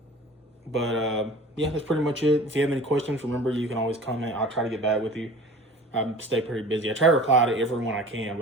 that's pretty much it. If you have any questions, remember, you can always comment. I'll try to get back with you. I stay pretty busy. I try to reply to everyone I can,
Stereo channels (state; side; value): normal; both; correlation 0.42